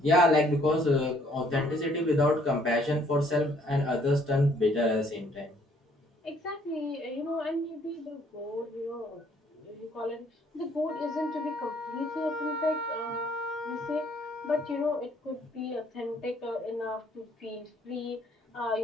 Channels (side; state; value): both; normal; correlation 0.63